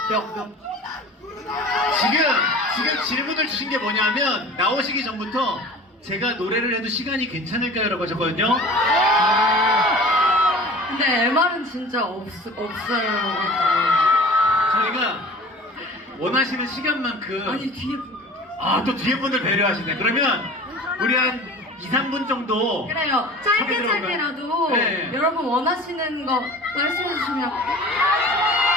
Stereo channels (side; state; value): both; normal; correlation 0.41